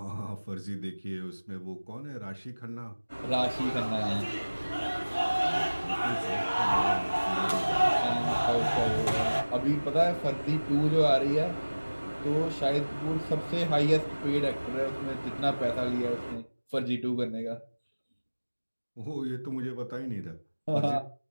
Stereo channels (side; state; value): both; inverted; correlation -1.00